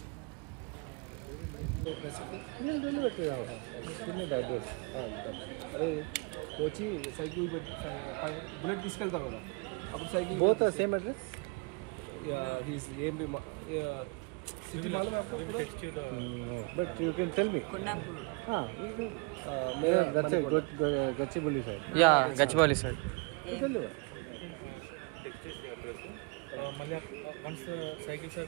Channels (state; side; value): quieter; left; 31.4 dB